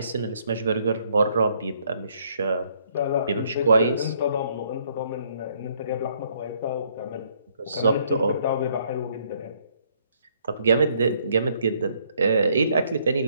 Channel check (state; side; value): inverted; both; correlation -0.67